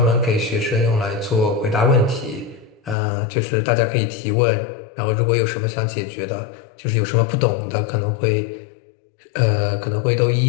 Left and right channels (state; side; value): drops out; right; at 3.0 s